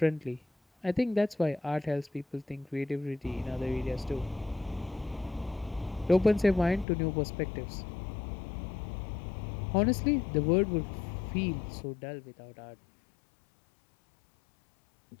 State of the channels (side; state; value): right; drops out; at 6.9 s